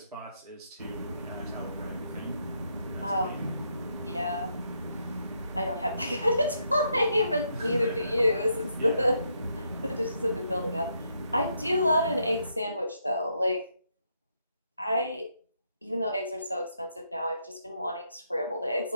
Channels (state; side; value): inverted; both; correlation -0.77